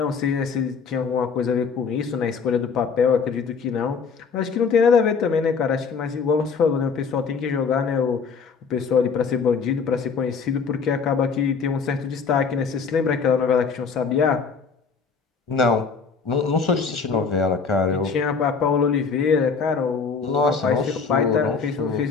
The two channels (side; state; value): right; quieter; 5.5 dB